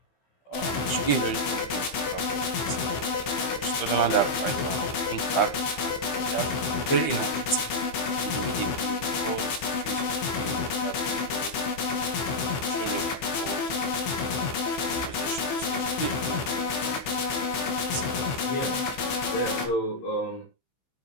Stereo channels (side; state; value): right; late; 15 ms